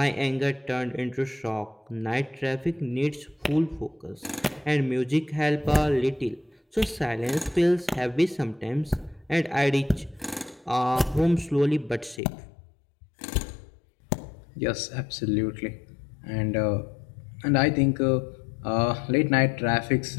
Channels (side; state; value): right; drops out; at 12.2 s